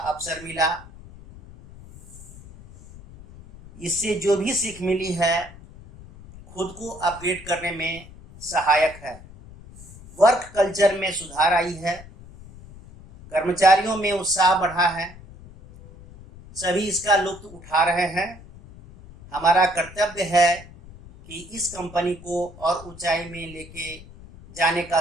मिला। इससे जो भी सीख मिली है, खुद को अपग्रेड करने में सहायक है। वर्क कल्चर में सुधार आई है, कर्मचारियों में उत्साह बढ़ा है, सभी इसका लुत्फ उठा रहे हैं। हमारा कर्तव्य है कि इस कंपनी को और ऊंचाई में लेके जाने का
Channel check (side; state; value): left; noise; rumble, 19 dB below the sound